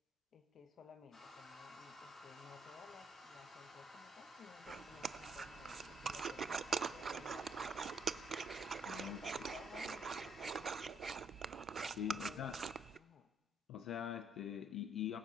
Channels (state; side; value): normal; both; correlation 0.68